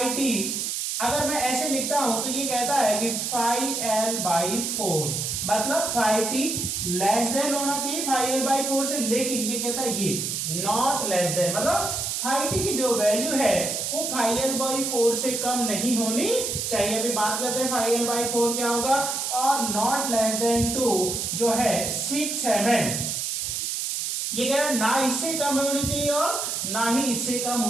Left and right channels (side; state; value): right; noise; hiss, 2 dB below the sound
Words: टी अगर मैं ऐसे लिखता हूं तो ये कहता है कि फाई एल बाई 4, मतलब फाई टी लेस देन होना चाहिए फाई एल बाई 4 से, लेकिन ये कहता है ये नॉट लेस देन, मतलब फाई टी की जो वैल्यू है वो फाई एल बाई 4 से कम नहीं होनी चाहिए। अभी बात करते हैं फाई एल बाई 4 क्या होगा। और नॉट लेस देन 2 जो है 6 mm, ये कह रहा है ना इससे कम होनी चाहिए और ना ही इससे कम